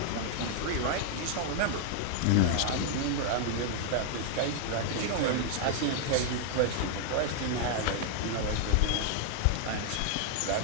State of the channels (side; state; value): both; different; correlation 0.00